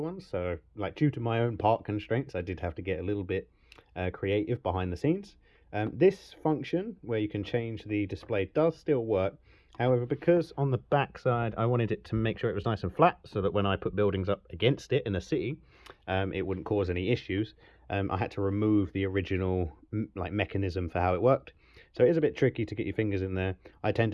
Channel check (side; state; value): both; identical; correlation 1.00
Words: so due to my own part constraints, I did have to get a little bit creative behind the scenes. This function where you can change the display does still work. However, because on the back side I wanted it to make sure it was nice and flat so that when I put buildings up against it in a city, it wouldn't cause any issues. I had to remove the original mechanism for how it worked. So it is a bit tricky to get your fingers in there. I tend